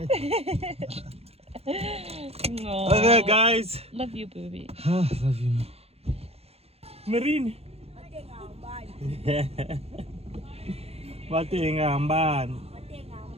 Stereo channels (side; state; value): left; late; 0.29 ms